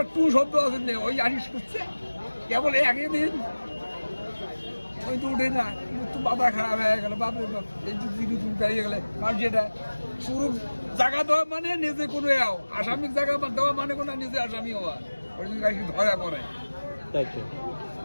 টু শব্দ আছে নেই, ওই আসিস করছে কেবল একই দিন ওই তো উঠে না, কিন্তু মাথা খারাপ হয়ে গেল। বাপরে বাপ, এই যে দিদি তুমি দাঁড়িয়ে গেলে, কারণ যেটা পুরো জায়গা দেওয়া মানে নিজে কোনো আসামির জায়গা দেওয়া মানে কোনো নিজে আসামি হওয়া, ওই জন্য গাড়ি ধরা পড়ে। তাই তো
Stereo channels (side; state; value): both; inverted; correlation -1.00